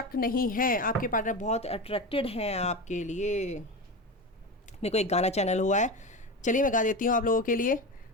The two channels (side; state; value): both; normal; correlation 0.23